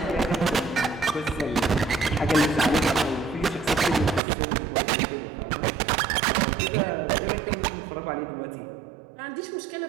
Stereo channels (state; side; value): drops out; left; at 4.2 s